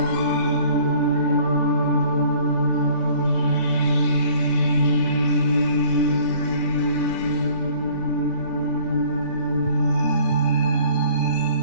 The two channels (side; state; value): right; late; 3.4 ms